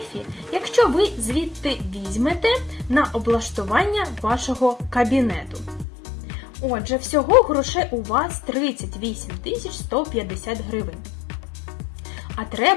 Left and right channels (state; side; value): drops out; right; at 5.9 s